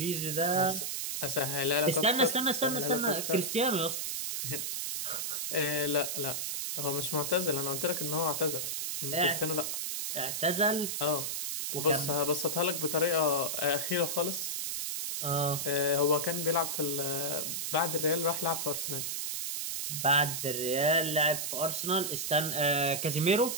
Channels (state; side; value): noise; right; hiss, 2 dB below the sound